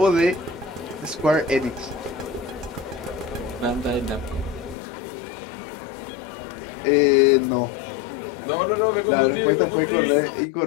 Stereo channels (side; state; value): right; drops out; at 4.8 s